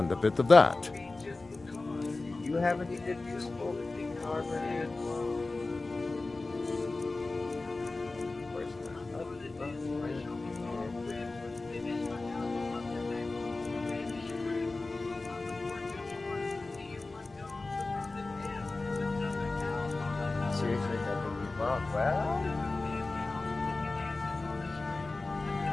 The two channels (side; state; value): right; quieter; 3.3 dB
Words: a bit of that. Do you have any good useful armor here? Of course not. Seriously, that would be wrong. Well...